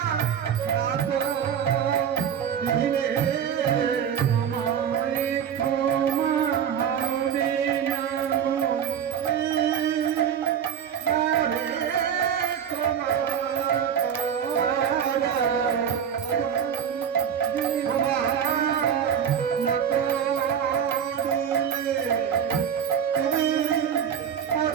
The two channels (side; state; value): left; quieter; 8.4 dB